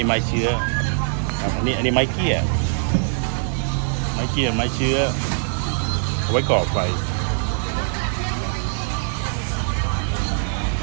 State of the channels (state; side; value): silent; left; digital silence